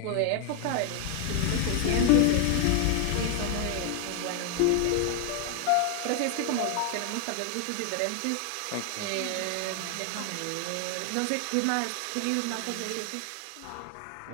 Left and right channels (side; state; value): both; different; correlation 0.00